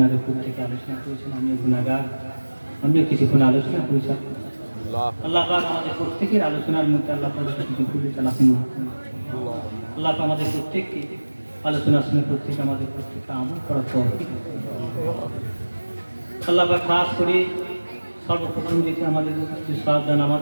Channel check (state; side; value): inverted; both; correlation -1.00